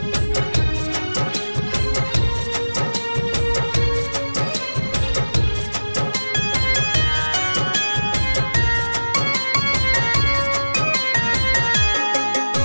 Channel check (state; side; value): inverted; both; correlation -1.00